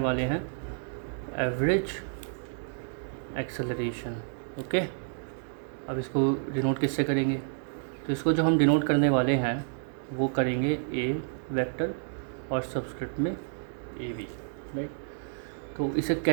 हैं एवरेज एक्सेलरेशन। ओके, अब इसको डिनोट किससे करेंगे? तो इसको जो हम डिनोट करने वाले हैं वो करेंगे ए वेक्टर और सबस्क्रिप्ट में ए वी, राइट। तो इसे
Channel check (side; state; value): left; silent; digital silence